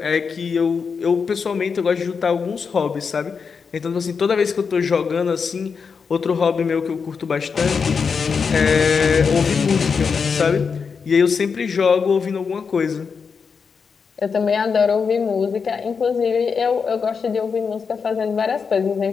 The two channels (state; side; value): quieter; right; 5.7 dB